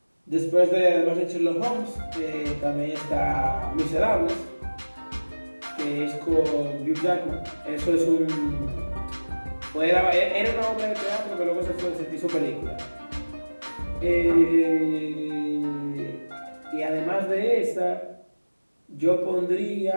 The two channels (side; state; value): both; inverted; correlation -1.00